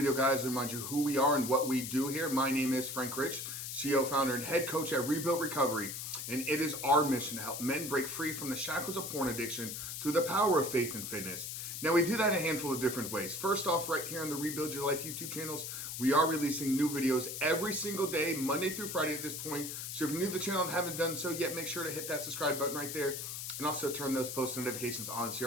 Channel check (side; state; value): left; noise; hiss, 6 dB below the sound